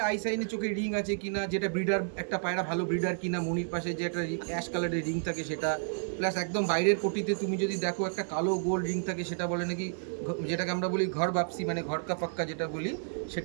আই সাইনে চোখে রিং আছে কিনা, যেটা ব্রিডার একটা পায়রা ভালো ব্রিডার কিনা, মনির পাশে যে একটা অ্যাশ কালারের রিং থাকে সেটা, প্লাস একদম বাইরের পটিতে তুমি যদি দেখো একটা কালো গোল্ড রিং থাকে, সেটা বলে নাকি যেটাকে আমরা বলি ঘর বাপসি, মানে ঘর কা পাক্কা যেটা বলি,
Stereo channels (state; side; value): silent; left; digital silence